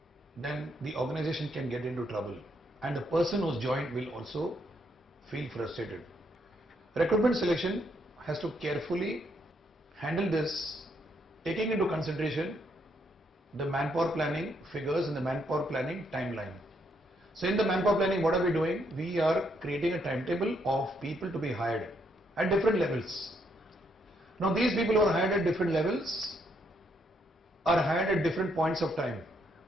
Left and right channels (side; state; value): both; normal; correlation 0.74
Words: then the organization can get into trouble and the person who's joined will also feel frustrated. Recruitment selection has to carefully handle this, taking into consideration the manpower planning figures and the manpower planning timeline. So in the manpower planning, what are we doing? We are creating a timetable of people to be hired at different levels. Now these people who are hired at different levels are hired at different points of time.